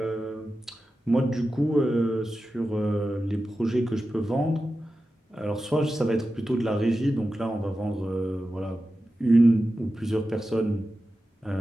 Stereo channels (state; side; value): normal; both; correlation 0.92